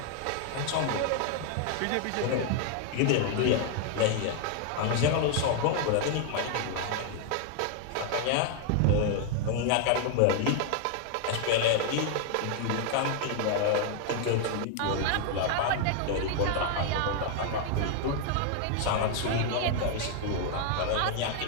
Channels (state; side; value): different; both; correlation 0.00